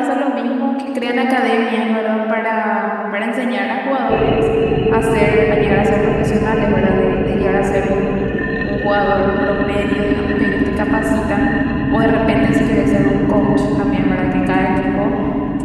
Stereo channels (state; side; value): identical; both; correlation 1.00